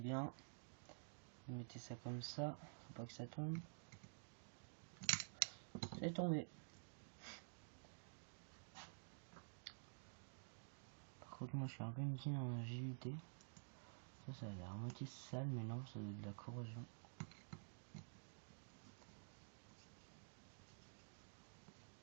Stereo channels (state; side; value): silent; left; digital silence